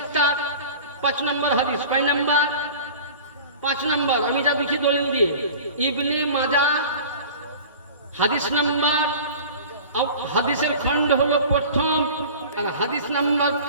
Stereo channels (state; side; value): inverted; both; correlation -0.40